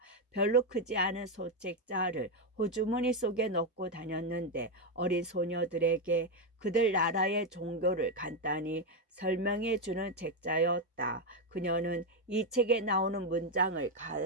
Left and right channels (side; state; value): both; normal; correlation 0.05